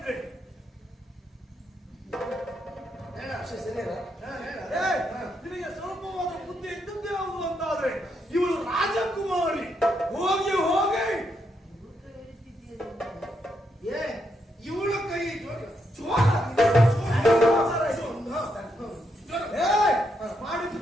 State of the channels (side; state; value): both; normal; correlation 0.79